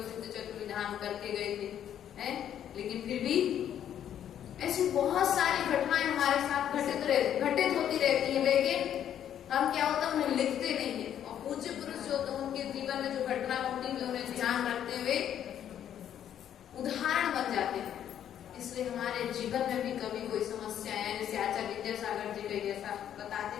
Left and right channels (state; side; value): quieter; right; 10.1 dB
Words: सिद्ध चक्र विधान करके गए थे, हैं? लेकिन फिर भी ऐसी बहुत सारी घटनाएं हमारे साथ घटित होती रहती है, लेकिन हम क्या होता है उन्हें लिखते नहीं है। और पूज्य पुरुष जो होते हैं उनके जीवन में जो घटना होती है उन्हें ध्यान रखते हुए उदाहरण बन जाते हैं। इसलिए हमारे जीवन में भी कभी कोई समस्या है, जैसे आचार्य विद्यासागर जी का जैसा